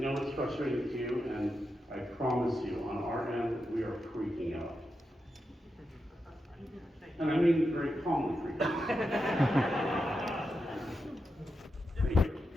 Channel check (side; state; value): both; normal; correlation 0.88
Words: it's frustrating to you, and I promise you, on our end, we are freaking out. And I mean very calmly freaking out. Thank you.